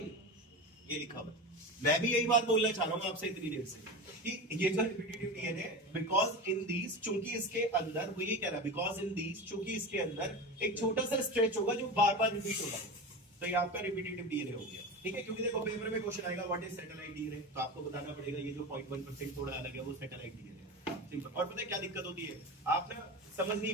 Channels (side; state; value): both; normal; correlation 0.25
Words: ये लिखा हुआ है। मैं भी यही बात बोलना चाह रहा हूँ आपसे इतनी देर से कि ये जो repetitive DNA, because in these, चूंकि इसके अंदर, वो ये कह रहा है बिकॉज इन दीज, चूंकि इसके अंदर एक छोटा सा स्ट्रेच होगा जो बार बार रिपीट होगा, तो ये आपका रिपीटिटिव डीएनए हो गया। ठीक है, क्योंकि देखो पेपर में क्वेश्चन आएगा व्हाट इज सैटेलाइट डीएनए, तो आपको बताना पड़ेगा ये जो 0.1% थोड़ा अलग है वो सैटेलाइट डीएनए है। सिंपल। और पता है क्या दिक्कत होती है, आप ना समझ नहीं